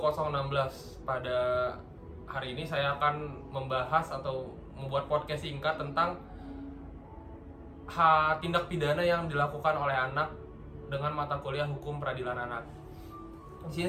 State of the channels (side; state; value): both; identical; correlation 1.00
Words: Pada hari ini saya akan membahas atau membuat podcast singkat tentang tindak pidana yang dilakukan oleh anak dengan mata kuliah Hukum Peradilan Anak. Di